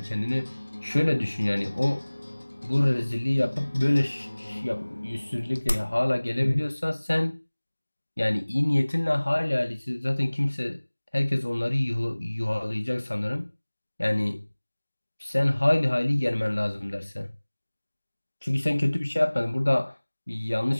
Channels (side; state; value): both; inverted; correlation -1.00